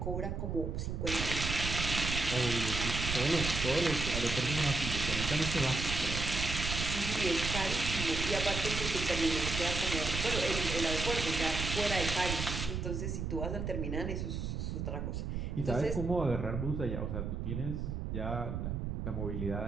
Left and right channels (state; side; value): noise; right; rumble, 3 dB below the sound